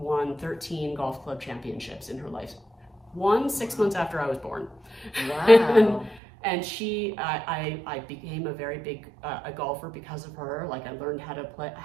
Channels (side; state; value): left; drops out; at 6.2 s